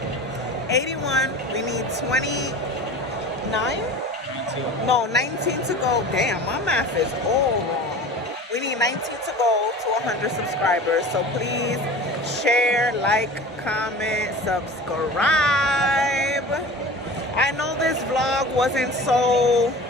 81. We need 29? 19. No, 19 to go. Damn, my math is all wrong. We need 19 to go to 100 subscribers. So please share, like, comment, subscribe. I know this vlog wasn't so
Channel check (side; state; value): both; normal; correlation 0.37